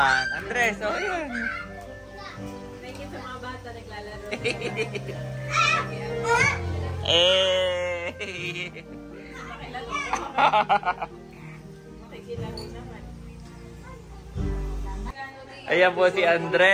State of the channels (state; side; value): identical; both; correlation 1.00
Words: Andres, oh yun. Thank you sa mga bata naglalaro. Ayan po si